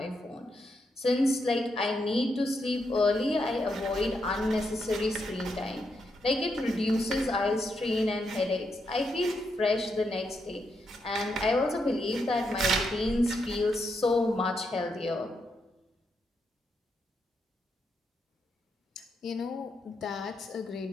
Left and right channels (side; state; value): both; normal; correlation 0.81